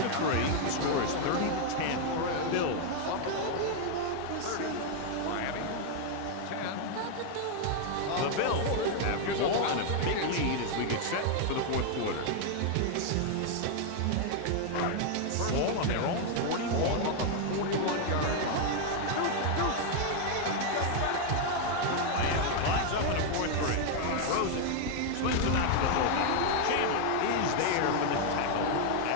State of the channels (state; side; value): different; both; correlation 0.00